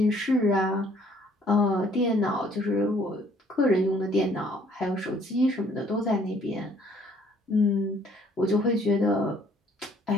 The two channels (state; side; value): normal; both; correlation 0.61